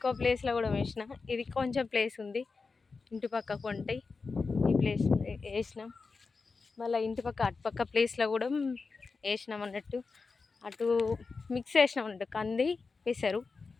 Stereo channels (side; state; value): right; quieter; 4.4 dB